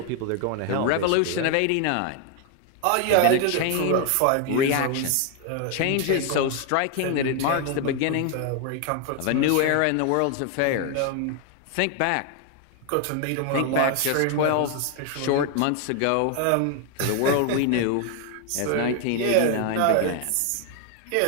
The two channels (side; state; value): both; different; correlation 0.00